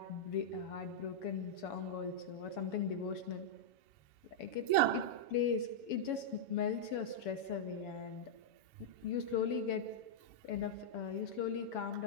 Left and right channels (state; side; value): late; right; 7.2 ms